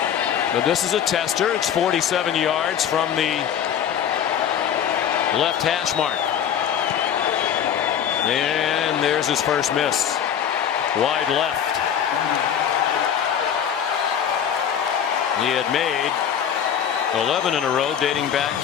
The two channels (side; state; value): right; quieter; 8.9 dB